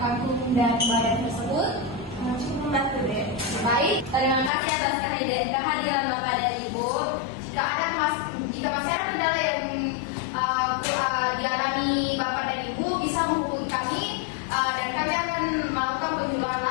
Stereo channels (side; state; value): right; drops out; at 4.5 s